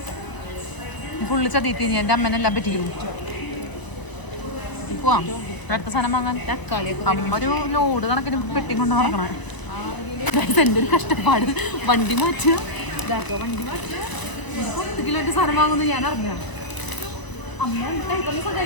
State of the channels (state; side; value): late; right; 1.0 ms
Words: ഫുള്ള് ചതീത്തി. നീ എൻ്റെ അമ്മനെല്ലാം പറ്റിക്കും. പോവാം അടുത്ത സാധനം വാങ്ങാൻ. അമ്മ ഒരു ലോഡ് കണക്കിന് പെട്ടി കൊണ്ട് നടക്കണേ. എൻ്റെ ഒരു കഷ്ടപ്പാട്. വണ്ടി മാറ്റുക 10 കിലോന്റെ സാധനം വാങ്ങുന്നു ഞാൻ അറിഞ്ഞ. അമ്മ കൈക്കൊന്ന്